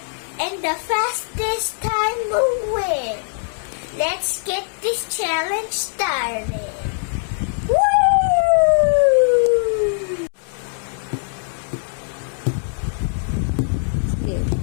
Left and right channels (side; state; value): right; silent; digital silence